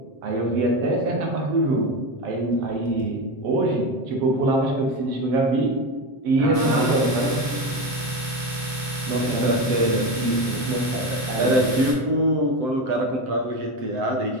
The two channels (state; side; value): late; left; 7.7 ms